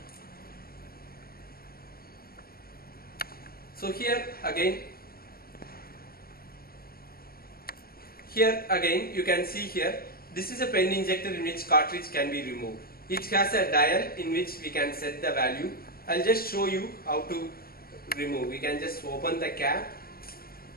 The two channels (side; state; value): right; late; 0.44 ms